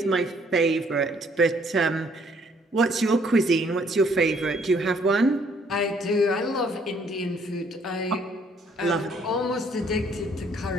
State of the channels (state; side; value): normal; both; correlation 0.64